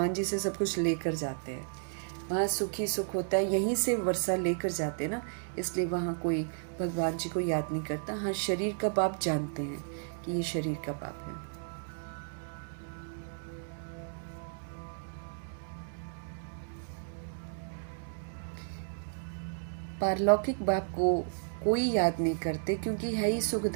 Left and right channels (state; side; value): silent; left; digital silence